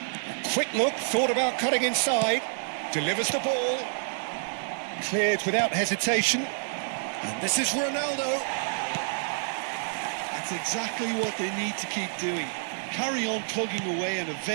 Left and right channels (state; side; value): silent; left; digital silence